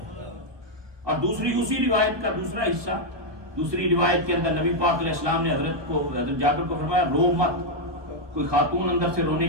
اور دوسری اسی روایت کا دوسرا حصہ، دوسری روایت کے اندر نبی پاک علیہ السلام نے حضرت جابر کو فرمایا رو مت۔ کوئی خاتون اندر سے رونے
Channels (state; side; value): late; left; 1.2 ms